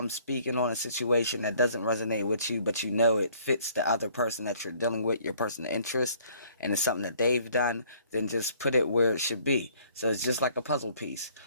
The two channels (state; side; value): inverted; both; correlation -0.59